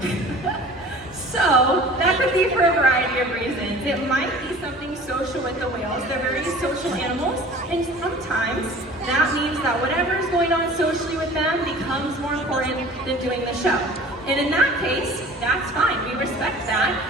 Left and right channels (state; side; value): normal; both; correlation 0.44